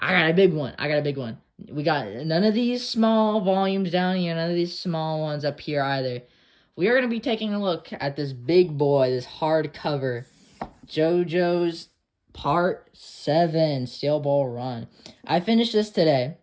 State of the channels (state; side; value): identical; both; correlation 1.00